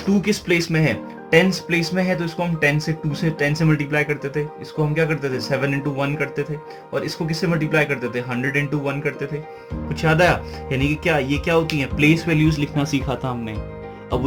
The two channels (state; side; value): identical; both; correlation 1.00